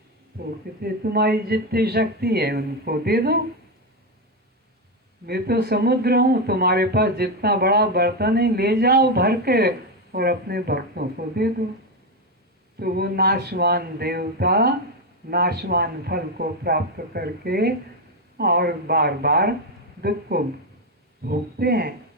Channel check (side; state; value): both; normal; correlation 0.09